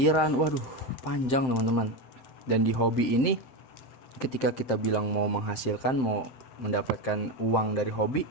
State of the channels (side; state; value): right; late; 7.7 ms